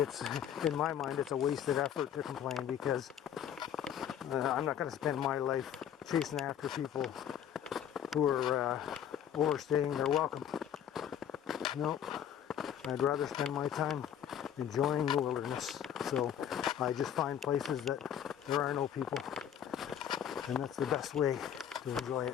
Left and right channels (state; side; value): quieter; right; 9.5 dB